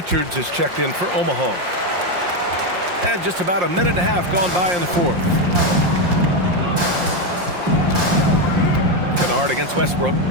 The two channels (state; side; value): late; left; 5.7 ms